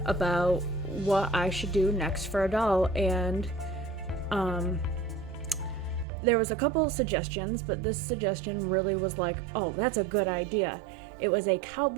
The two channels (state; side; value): drops out; left; at 6.1 s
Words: about what I should do next for a doll, and um, there was a couple suggestions, but this suggestion really was like, oh, that's a good idea. It was a